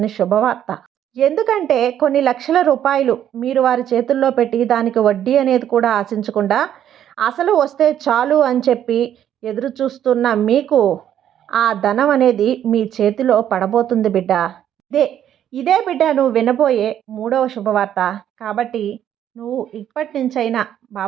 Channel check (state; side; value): quieter; left; 10.5 dB